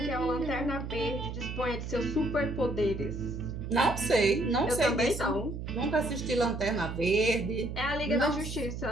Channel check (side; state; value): right; noise; hum, 6 dB below the sound